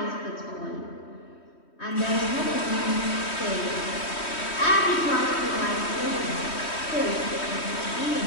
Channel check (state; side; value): late; right; 3.1 ms